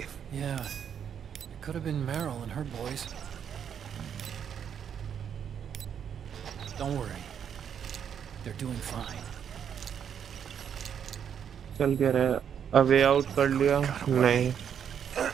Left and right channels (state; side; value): quieter; left; 8.2 dB